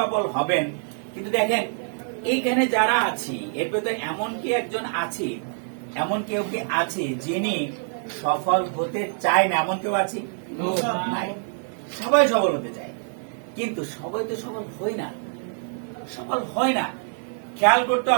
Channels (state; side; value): silent; left; 62 dB below the other